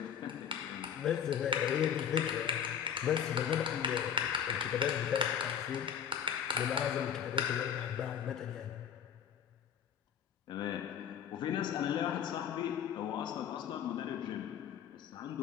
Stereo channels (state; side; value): quieter; right; 8.4 dB